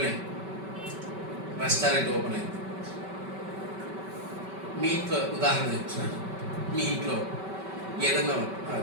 రెస్టారెంట్ ఓపెన్ అయింది. మీ ఇంట్లో ఉదాహరణ చెప్తున్నాను. మీ ఇంట్లో ఏదన్నా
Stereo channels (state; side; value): late; left; 5.2 ms